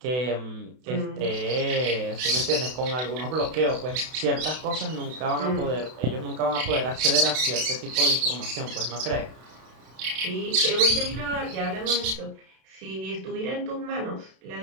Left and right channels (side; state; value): left; late; 32 ms